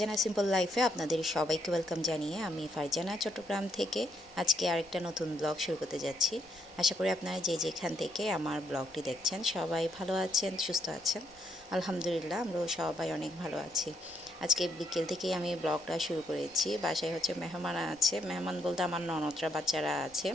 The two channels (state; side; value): noise; right; rumble, 27 dB below the sound